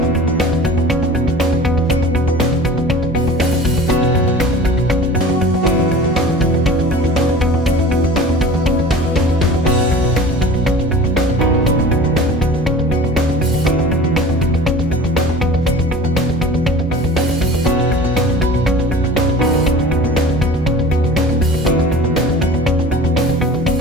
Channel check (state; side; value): normal; both; correlation 0.41